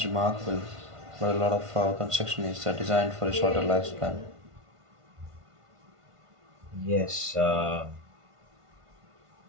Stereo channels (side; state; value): left; late; 1.5 ms